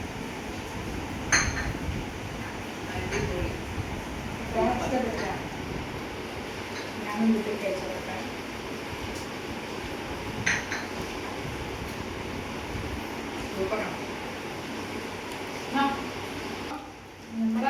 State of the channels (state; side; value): identical; both; correlation 1.00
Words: ഞാനും വീട്ടിൽ കഴിച്ചു കൊടുക്കാം. സൂപ്പറാണ്.